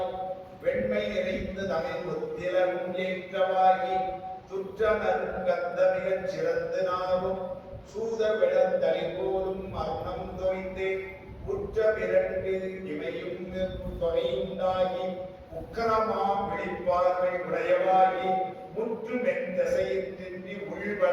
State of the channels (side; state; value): both; identical; correlation 1.00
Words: வெண்மை நிறைந்து தமிழ் ஒத்திலும் ஏற்றவாகி துற்ற நறுங்கந்த மிகச் சிறந்து நாவும் சூத விளந்தளி போலும் மரணம் தோய்ந்து உற்ற பிறண்டு இமையும் தொகையுண்டாகி உக்கரமாம் விழிப்பார்வை உடையவாகி முற்று மென்தசையின்றி